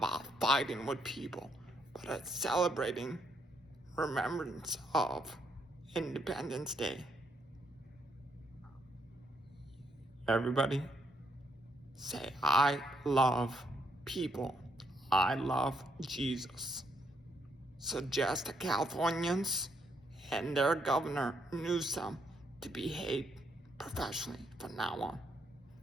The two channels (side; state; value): both; normal; correlation 0.74